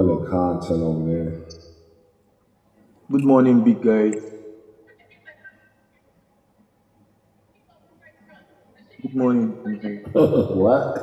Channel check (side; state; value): both; identical; correlation 1.00